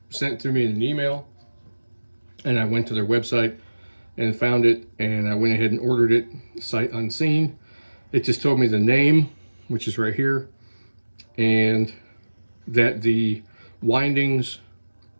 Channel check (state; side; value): inverted; both; correlation -1.00